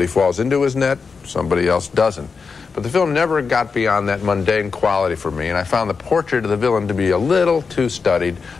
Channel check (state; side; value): quieter; right; 5.1 dB